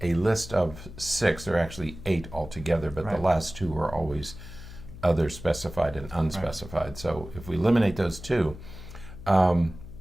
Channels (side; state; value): left; noise; hum, 14 dB below the sound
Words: a list of 6. There are actually 8 altogether, but the last 2 are always other specified and unspecified. So if we eliminate those 2,